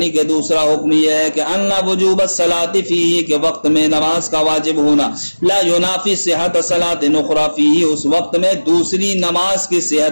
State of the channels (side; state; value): both; inverted; correlation -1.00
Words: کہ دوسرا حکم یہ ہے کہ ان وجوب الصلاۃ فیہ کے وقت میں نماز کا واجب ہونا لا ینافی صحت صلاۃ اخری فیہ اس وقت میں دوسری نماز کی